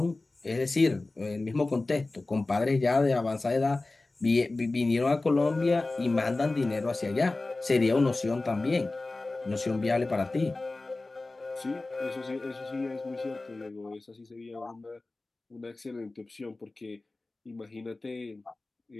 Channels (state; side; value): quieter; right; 3.2 dB